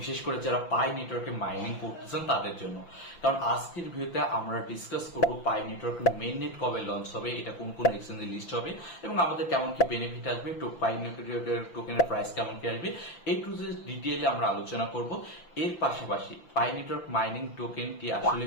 বিশেষ করে যারা পাই নেটওয়ার্কে মাইনিং করতেছেন তাদের জন্য। কারণ আজকের ভিডিওতে আমরা ডিসকাস করব পাই নেটওয়ার্কের মেইন নেট কবে লঞ্চ হবে, এটা কোন কোন এক্সচেঞ্জে লিস্ট হবে এবং আমাদের কেমন কি বেনিফিট আসবে, পাই নেটওয়ার্কের টোকেনের প্রাইস কেমন কি আসবে, এই টু যে ডিটেইলে আমরা আলোচনা করব। এর পাশাপাশি পাই নেটওয়ার্ক মাইনিং টোকেনটি আসলে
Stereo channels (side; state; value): right; late; 5.9 ms